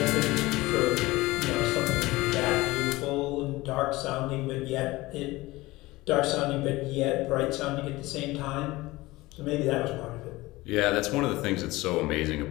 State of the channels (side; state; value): right; quieter; 19.9 dB